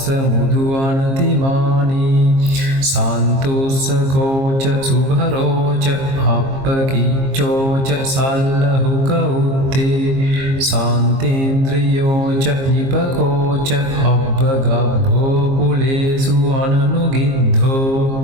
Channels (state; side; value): late; left; 22 ms